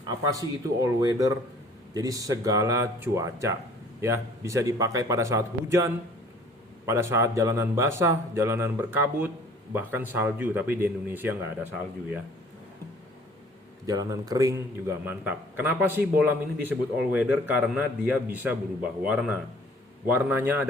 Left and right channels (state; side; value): normal; both; correlation 0.53